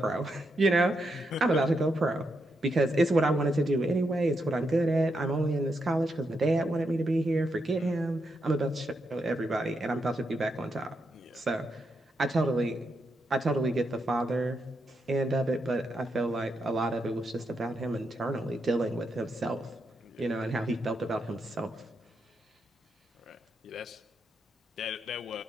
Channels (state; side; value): normal; both; correlation 0.82